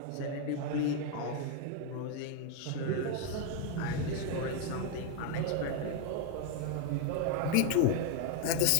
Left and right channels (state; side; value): different; both; correlation 0.01